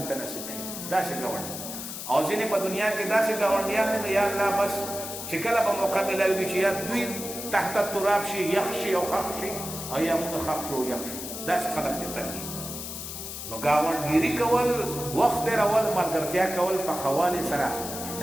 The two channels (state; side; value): noise; left; hiss, 8 dB below the sound